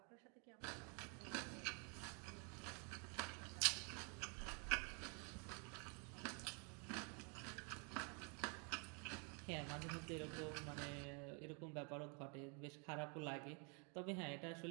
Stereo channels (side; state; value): left; quieter; 36.0 dB